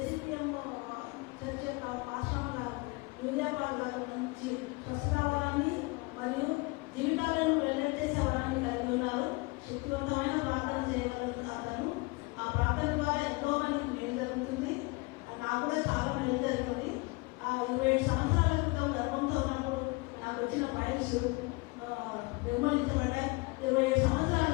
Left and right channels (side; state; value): right; quieter; 25.9 dB